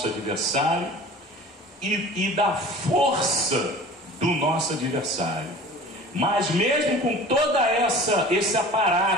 adversário e da força do nosso adversário. Mas mesmo com toda esse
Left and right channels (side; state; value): both; normal; correlation 0.41